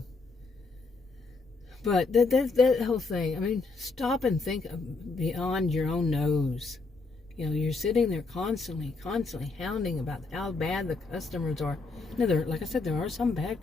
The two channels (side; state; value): right; quieter; 3.8 dB